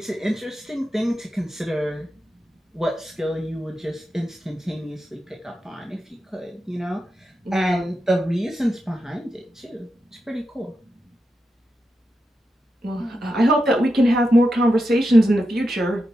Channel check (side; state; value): both; normal; correlation 0.88